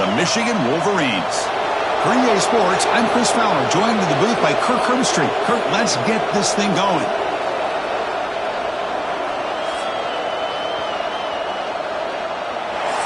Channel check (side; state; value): both; identical; correlation 1.00